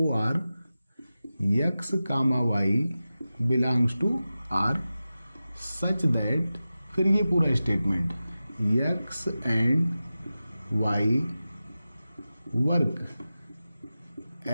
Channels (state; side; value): inverted; both; correlation -0.94